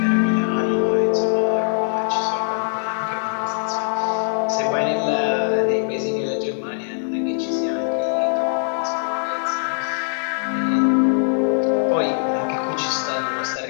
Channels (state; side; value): silent; right; 62 dB below the other